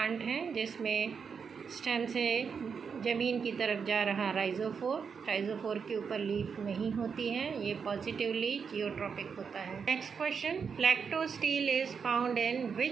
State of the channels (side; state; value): left; quieter; 6.2 dB